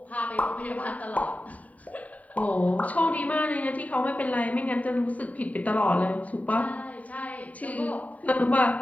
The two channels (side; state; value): right; late; 0.070 ms